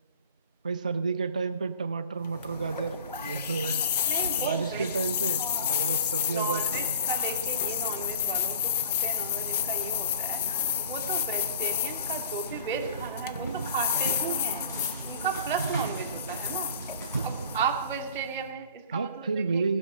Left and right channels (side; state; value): both; inverted; correlation -0.43